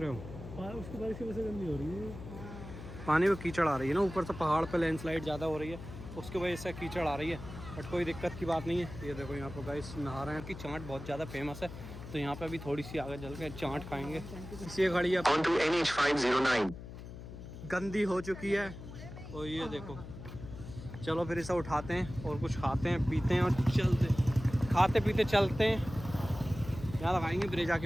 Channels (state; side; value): noise; left; hum, 12 dB below the sound